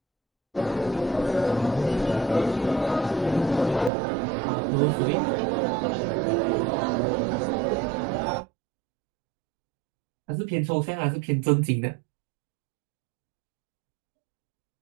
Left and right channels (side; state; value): left; drops out; at 3.9 s